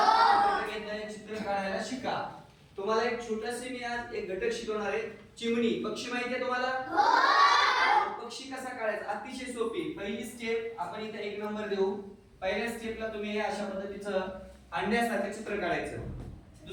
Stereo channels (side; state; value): both; identical; correlation 1.00